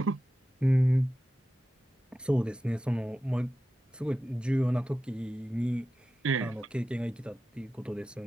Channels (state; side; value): normal; both; correlation 0.93